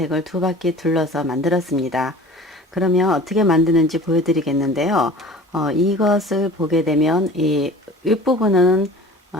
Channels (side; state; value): both; normal; correlation 0.43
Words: 두 바퀴 둘러서 만들었습니다. 그러면 어떻게 만드는지 보여드리겠는데요. 이것을 보게 되면 이 윗부분은